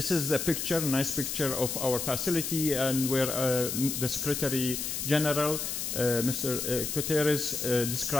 is a picture, a nice picture of our facility, and where the Secretary General, Mr. Guterres,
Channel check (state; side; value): noise; left; hiss, 3 dB below the sound